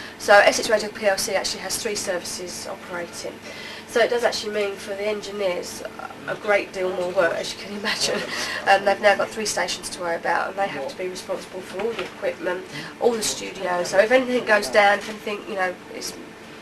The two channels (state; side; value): identical; both; correlation 1.00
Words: So Essex Radio PLC actually has 3 services operating. So it does actually mean for the engineers a great deal more work, as you can imagine. They've now got 3 stations to worry about, and they have to be responsible for all the equipment, all the studios. So if anything goes down, if anything, it's